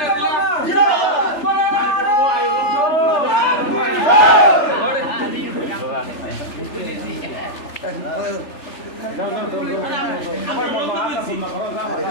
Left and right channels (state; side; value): late; right; 3.4 ms